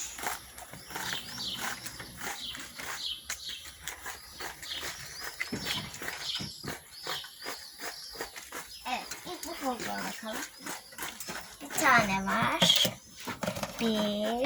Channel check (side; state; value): both; identical; correlation 1.00